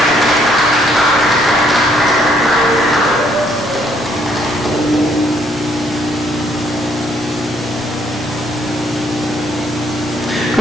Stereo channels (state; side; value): normal; both; correlation 0.68